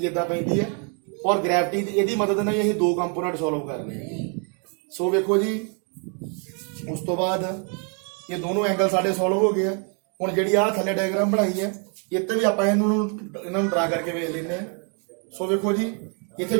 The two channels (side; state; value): left; quieter; 39.4 dB